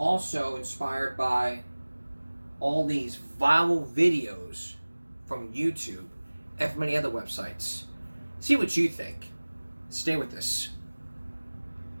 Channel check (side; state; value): both; inverted; correlation -1.00